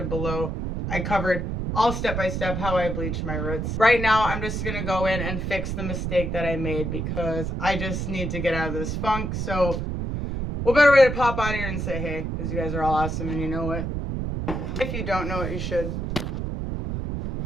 below. I covered all step-by-step how I bleach my roots. Right now, I'm just going to go in and fix the mistake that I made because I just need to get out of this funk. So, what better way to pop out here and say hey, because you guys are all awesome and you know it. If you don't know it, you should.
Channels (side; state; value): right; noise; rumble, 3 dB below the sound